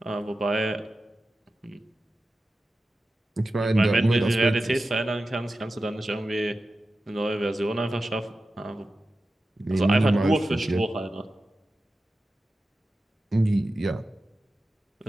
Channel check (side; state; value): both; normal; correlation 0.93